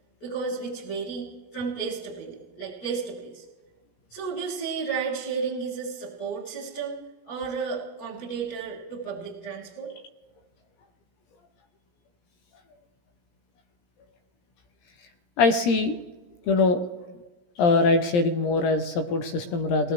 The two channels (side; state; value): right; late; 17 ms